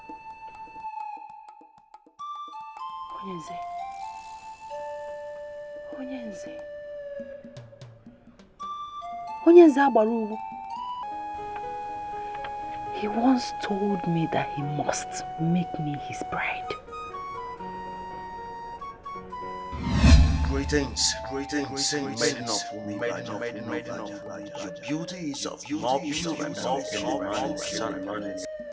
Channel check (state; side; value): identical; both; correlation 1.00